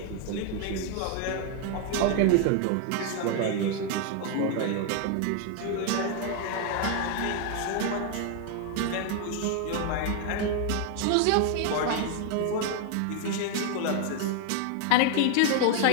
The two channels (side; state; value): both; different; correlation 0.01